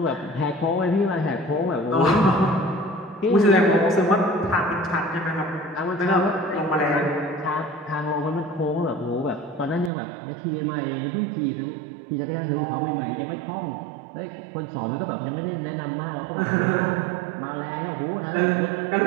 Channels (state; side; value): drops out; left; at 9.9 s